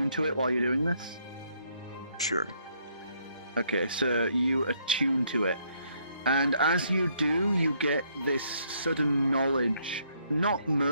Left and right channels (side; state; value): both; inverted; correlation -0.70